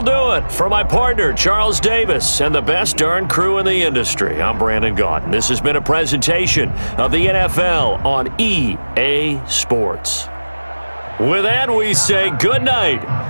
do it. For my partner, Charles Davis, and the best darn crew in the industry, I'm Brandon Gaunt. This has been a presentation of the NFL on EA Sports. With that, we say good night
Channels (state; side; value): inverted; both; correlation -1.00